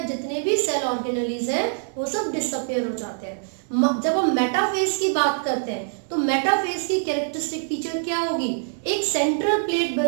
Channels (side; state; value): left; silent; digital silence